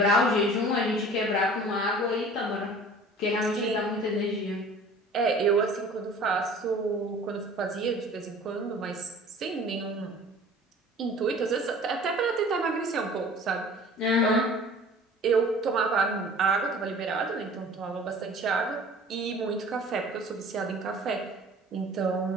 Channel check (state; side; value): normal; both; correlation 0.46